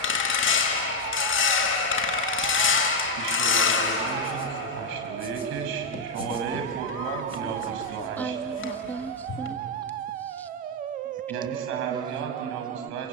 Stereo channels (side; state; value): both; normal; correlation 0.01